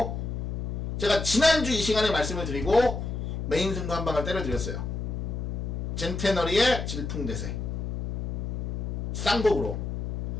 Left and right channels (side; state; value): left; noise; hum, 3 dB below the sound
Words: 제가 지난주 이 시간에 말씀을 드리고 메인 승부 한 방을 때려드렸어요. 젠테너리의 질풍대세 쌍곡으로.